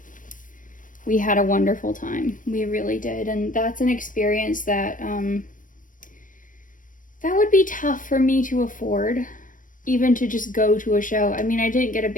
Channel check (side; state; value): right; late; 0.38 ms